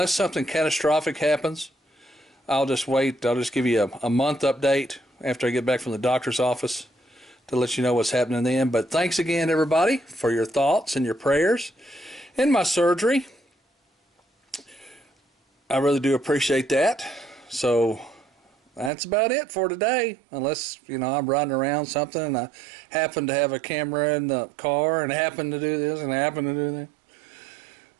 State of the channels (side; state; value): left; drops out; at 18.9 s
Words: something catastrophic happens, I'll just wait. I'll just give you a month update after I get back from the doctor's office to let you know what's happening then. But thanks again, everybody, for your thoughts and your prayers in my surgery. I really do appreciate that. So that's about it for today, unless, you know, I'm riding around something and I happen to have a camera in the car and happen to do this and happen to do that.